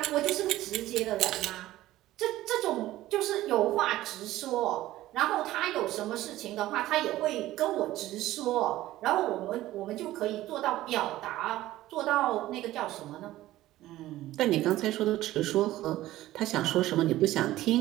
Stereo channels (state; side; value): quieter; left; 15.5 dB